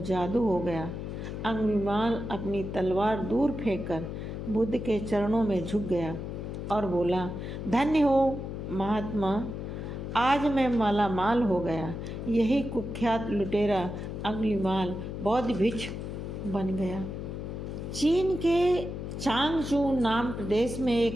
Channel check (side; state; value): left; noise; hum, 6 dB below the sound